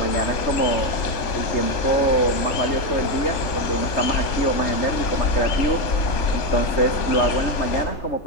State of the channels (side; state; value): right; late; 3.4 ms